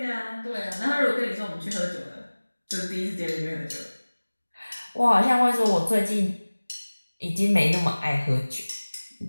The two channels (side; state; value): both; inverted; correlation -1.00